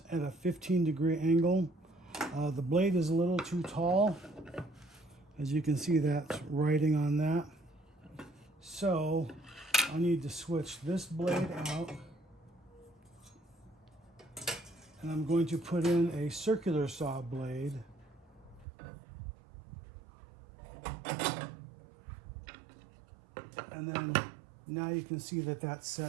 at a 15-degree angle. The blade is a little too tall. As you can see, that's writing on that. So I need to switch this blade out. And I'm going to put in a circular saw blade. And then now you can see that that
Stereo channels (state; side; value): drops out; left; at 18.7 s